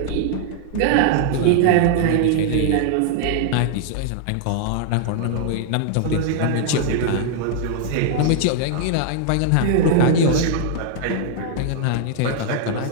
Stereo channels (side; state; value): both; different; correlation 0.00